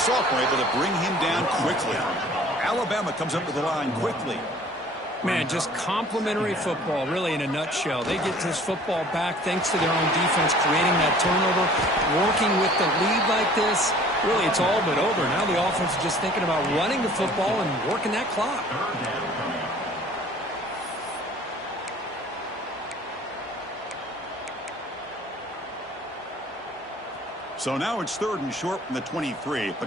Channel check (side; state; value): both; normal; correlation 0.51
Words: able to bring him down quickly. Alabama comes up to the line quickly. Man, just complimentary football, really, in a nutshell. They get this football back thanks to their own defense, creating that turnover, working with the lead like this. Really, it's all but over. Now the offense is just thinking about running the football and working that clock. So now it's 3rd and short from the 23.